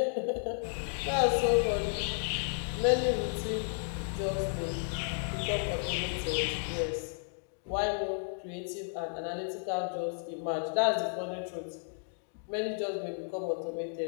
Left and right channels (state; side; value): silent; right; digital silence